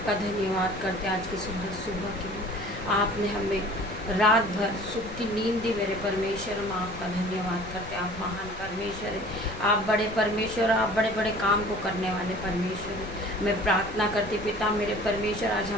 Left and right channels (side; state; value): left; noise; rumble, 13 dB below the sound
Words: धन्यवाद करते आज की सुंदर सुबह के लिए। आपने हमें रात भर सुख की नींद दी मेरे परमेश्वर, हम आपका धन्यवाद करते। आप महान परमेश्वर है, आप बड़े परमेश्वर, आप बड़े बड़े काम को करने वाले परमेश्वर है। मैं प्रार्थना करती पिता मेरे परमेश्वर, आज